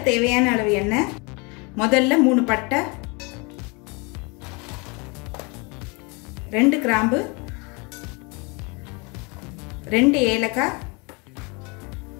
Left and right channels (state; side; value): quieter; right; 29.9 dB